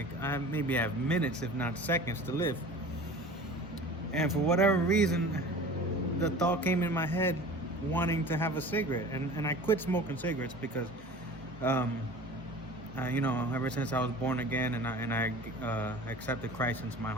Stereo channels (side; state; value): both; normal; correlation 0.40